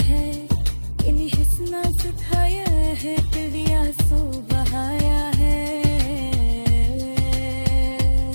हैं, इन हिस्ना सुखाया है तेरी आंसू बहाया है।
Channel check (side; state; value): both; inverted; correlation -1.00